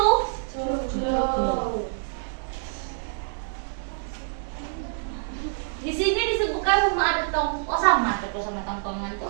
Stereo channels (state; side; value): silent; left; digital silence